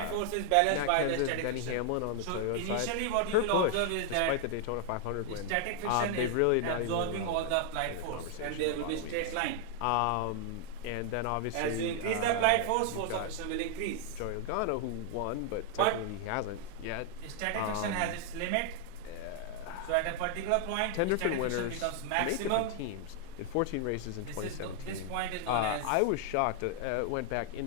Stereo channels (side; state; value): both; different; correlation 0.00